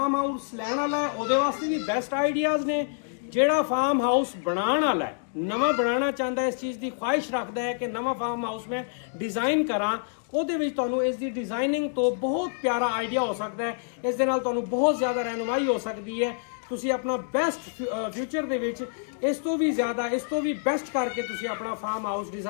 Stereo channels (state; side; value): silent; right; digital silence